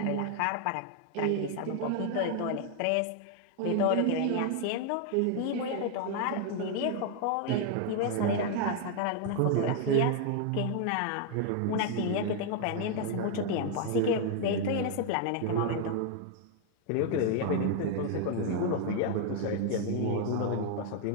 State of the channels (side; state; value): both; different; correlation 0.00